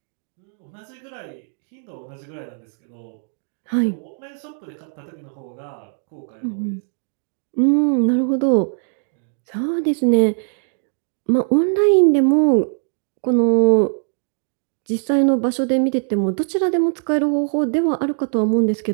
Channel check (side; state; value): left; silent; digital silence